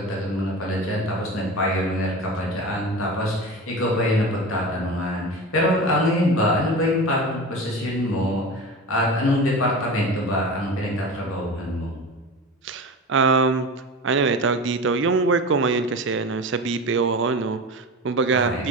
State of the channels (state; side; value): normal; both; correlation 0.30